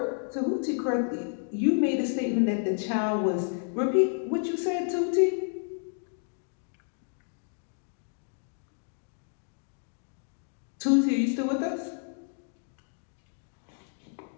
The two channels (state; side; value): silent; right; 57 dB below the other